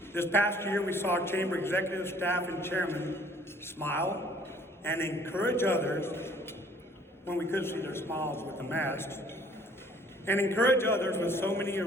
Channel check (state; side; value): normal; both; correlation 0.57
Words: This past year, we saw chamber executive, staff, and chairman smile and encourage others when we could see their smiles with the masks, and encourage others with so many